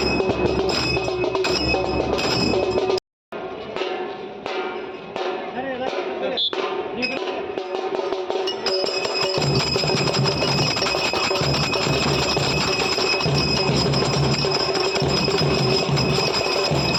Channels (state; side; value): identical; both; correlation 1.00